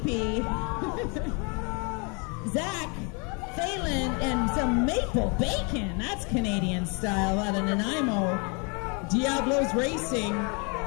Zach Phelan, and some maple bacon. That's Canadian style out of Nanaimo. Diablos Racing.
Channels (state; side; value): quieter; right; 33.4 dB